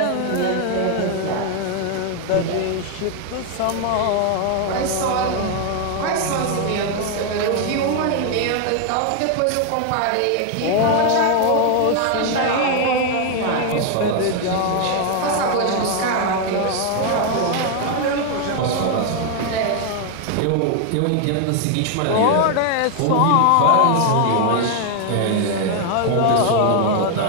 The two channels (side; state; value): both; different; correlation 0.00